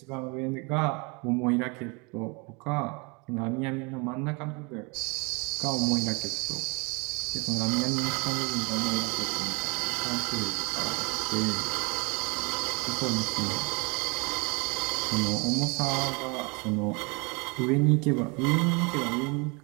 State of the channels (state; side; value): quieter; left; 30.3 dB